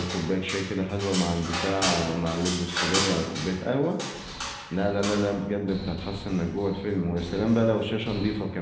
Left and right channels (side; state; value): both; identical; correlation 1.00